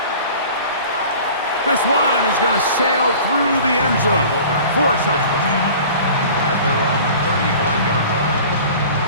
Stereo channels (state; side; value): inverted; both; correlation -0.43